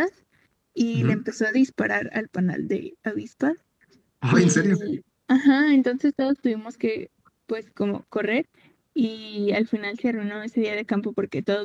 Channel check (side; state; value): both; identical; correlation 1.00